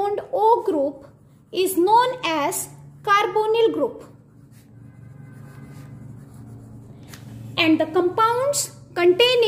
O group is known as carbonyl group. And the compounds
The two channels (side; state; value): both; identical; correlation 1.00